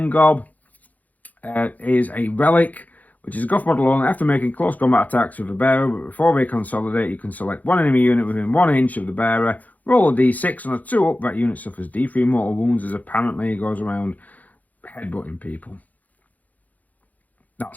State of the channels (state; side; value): late; right; 0.079 ms